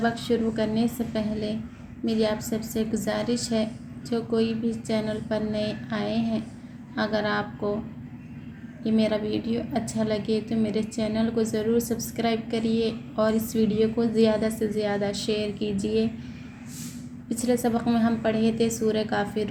शुरू करने से पहले मेरी आप सबसे गुजारिश है, जो कोई भी चैनल पर नए आए हैं, अगर आपको ये मेरा वीडियो अच्छा लगे तो मेरे चैनल को ज़रूर सब्सक्राइब करिए और इस वीडियो को ज़्यादा से ज़्यादा शेयर कीजिए। पिछले सबक में हम पढ़े थे सूरह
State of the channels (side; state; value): both; identical; correlation 1.00